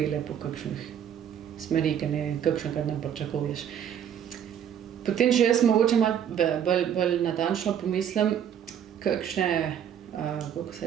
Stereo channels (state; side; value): quieter; left; 9.2 dB